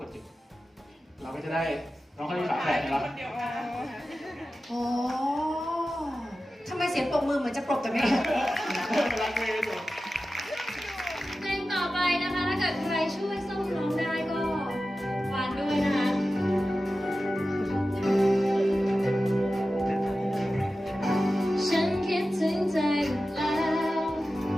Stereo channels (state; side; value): normal; both; correlation 0.94